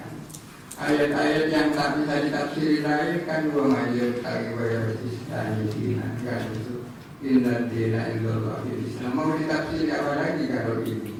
Ayat-ayat yang tak bisa ditafsiri lain kan wa mayyul taqi wa yaristani dinan kan itu. Inna dina illallah Islam. Mau ditafsiri apa lagi kalau ini?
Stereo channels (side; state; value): both; identical; correlation 1.00